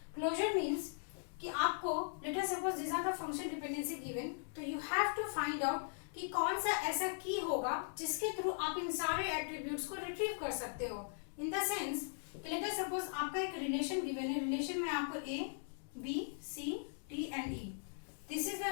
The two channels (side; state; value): right; silent; digital silence